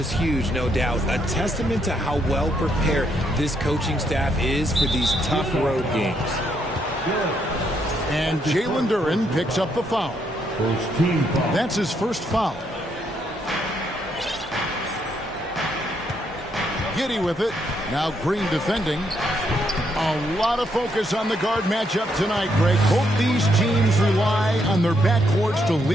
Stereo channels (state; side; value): normal; both; correlation 0.75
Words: huge, no doubt. A testament to how well prepared this coaching staff is for these tough road games. And Jalen Duren picks up the foul. That's his first foul. Giddey with it. Now Green defending. A lot of focus on the guard matchup tonight, Greg. Both these teams rely on their backcourts to